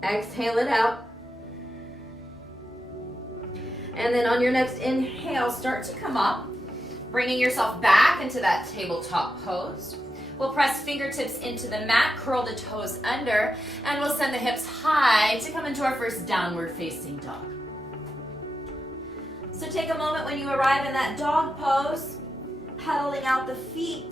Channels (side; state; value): both; normal; correlation 0.88